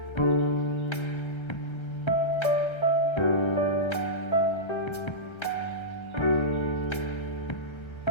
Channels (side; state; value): right; late; 1.3 ms